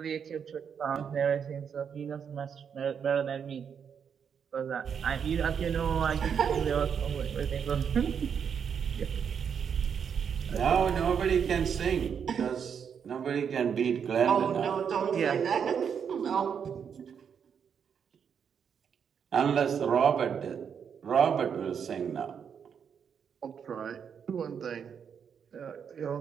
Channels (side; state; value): left; quieter; 7.3 dB